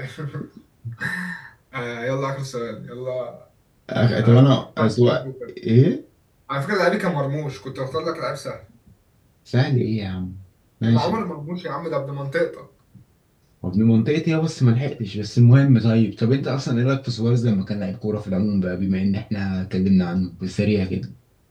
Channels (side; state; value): both; identical; correlation 1.00